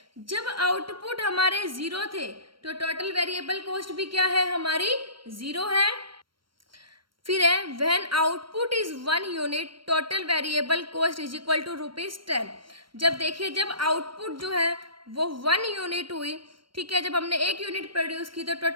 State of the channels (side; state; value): left; late; 0.73 ms